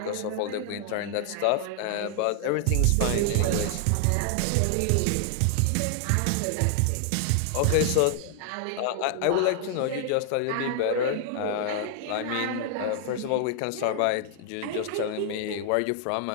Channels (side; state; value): both; different; correlation 0.00